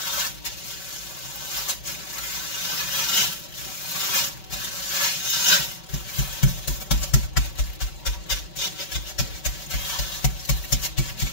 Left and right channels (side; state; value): right; late; 5.2 ms